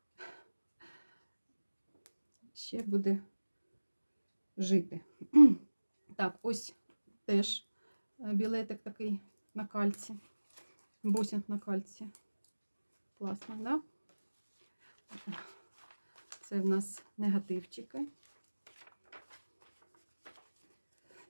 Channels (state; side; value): inverted; both; correlation -1.00